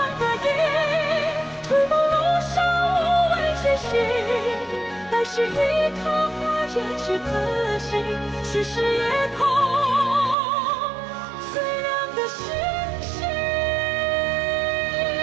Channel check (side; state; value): left; drops out; at 10.4 s